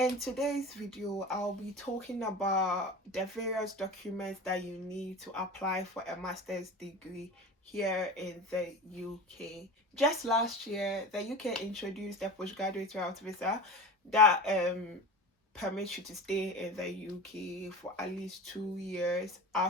today's video, I'll be talking about the various documents that you need to apply for a master's degree here in the UK. Just last year, the UK introduced a postgraduate route visa that permits you to stay in the UK for at least 2 years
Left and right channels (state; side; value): normal; both; correlation 0.32